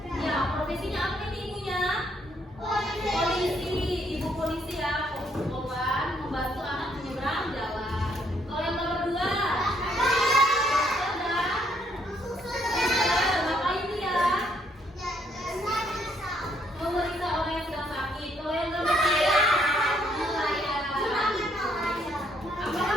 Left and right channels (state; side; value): normal; both; correlation 0.70